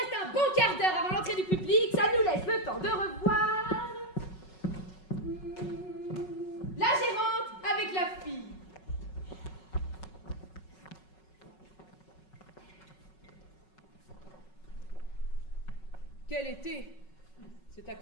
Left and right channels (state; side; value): late; right; 5.4 ms